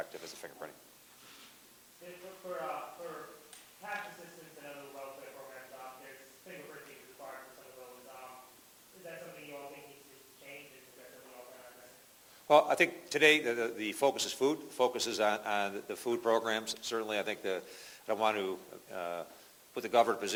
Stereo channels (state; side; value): identical; both; correlation 1.00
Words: as the fingerprinting. For tax assistance and other welfare programs, there's fingerprinting required for some of those. Is that something you all think needs to change? Is that something you all can address? Well, I think today the focus is food. The focus is on the food programs. Certainly, I think I don't want to put the governor in a